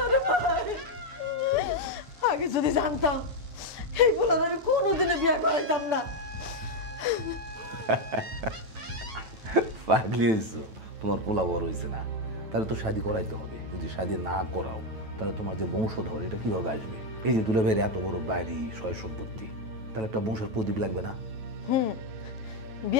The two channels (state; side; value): late; left; 9.1 ms